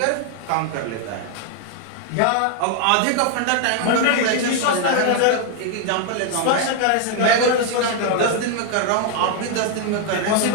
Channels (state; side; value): different; both; correlation 0.00